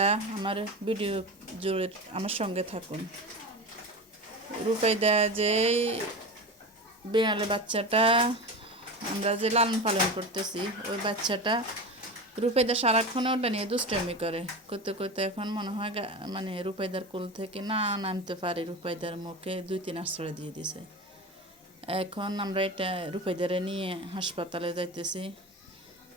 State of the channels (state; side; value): normal; both; correlation 0.27